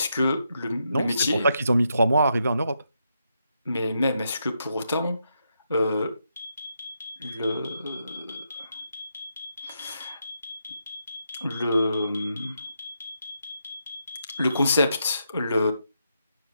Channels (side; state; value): both; inverted; correlation -0.81